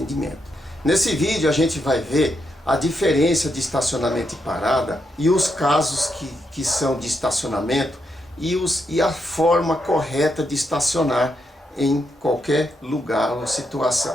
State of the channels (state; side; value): normal; both; correlation 0.82